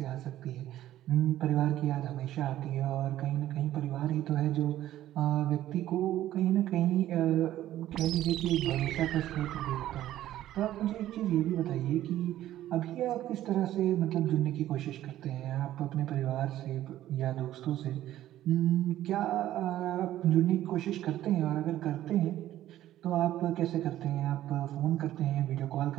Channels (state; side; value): quieter; left; 13.4 dB